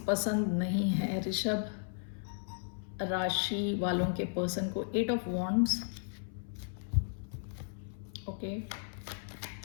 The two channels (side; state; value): right; silent; 54 dB below the other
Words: पसंद नहीं है ऋषभ राशि वालों के पर्सन को। 8 of wands, okay,